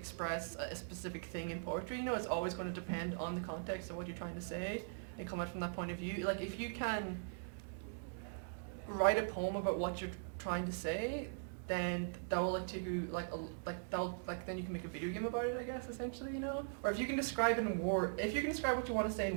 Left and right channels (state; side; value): silent; left; digital silence